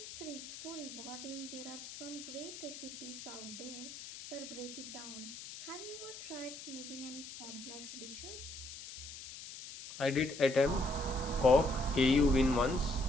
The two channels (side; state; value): left; noise; hiss, 12 dB below the sound